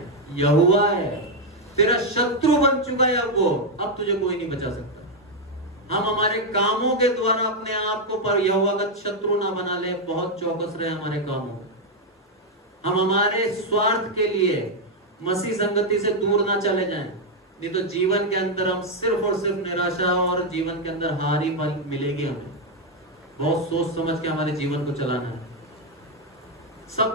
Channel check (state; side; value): normal; both; correlation 0.02